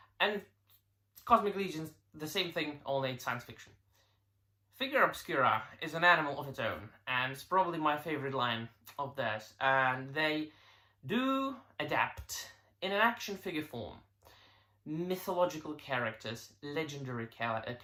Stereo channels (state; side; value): identical; both; correlation 1.00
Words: And Cosmic Legions, the same thing, only it's science fiction. Figura Obscura is an animal of its own, and it's probably my favorite line of theirs. And they do adapt in an action figure form mythological characters, legendary